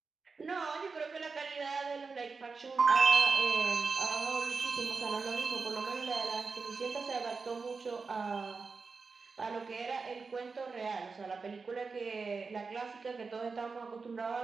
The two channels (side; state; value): left; quieter; 4.6 dB